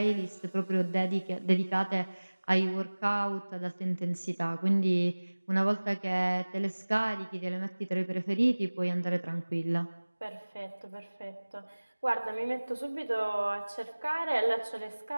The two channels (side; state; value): both; inverted; correlation -1.00